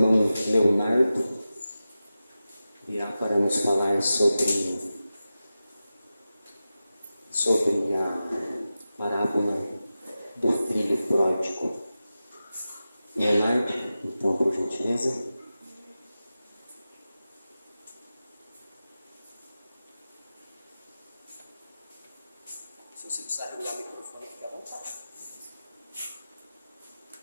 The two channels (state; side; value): inverted; both; correlation -0.93